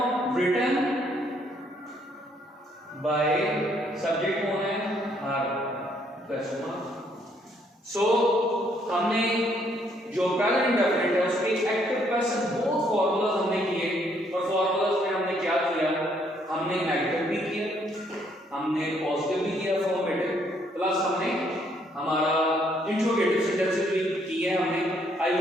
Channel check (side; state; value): both; normal; correlation 0.69